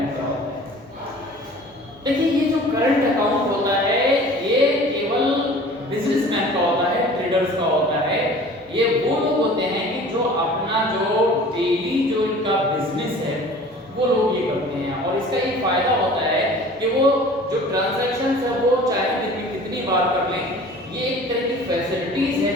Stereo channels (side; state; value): both; normal; correlation 0.45